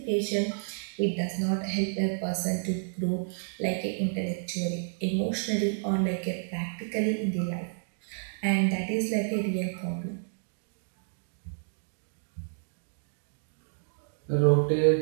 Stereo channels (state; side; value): silent; left; digital silence